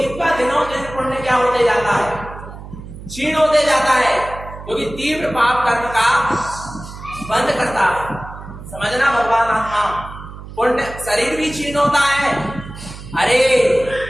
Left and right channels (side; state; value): right; noise; hum, 13 dB below the sound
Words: का दिनों दिन पुण्य क्या होते जाता है? क्षीण होते जाता है, क्योंकि तीव्र पाप कर्म का बंद करता है। समझना भगवान। आत्मा पुण्य, शरीर भी क्षीण होता है। अरे